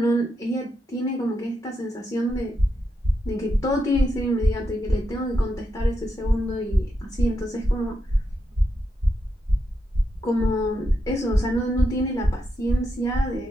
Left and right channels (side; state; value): both; normal; correlation 0.84